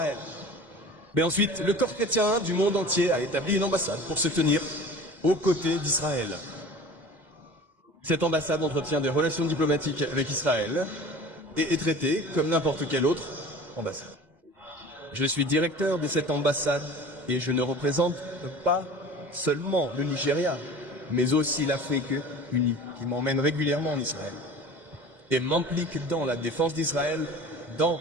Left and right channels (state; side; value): late; left; 2.1 ms